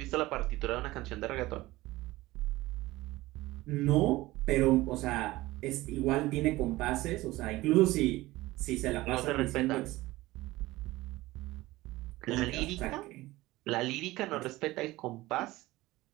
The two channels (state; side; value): quieter; left; 18.7 dB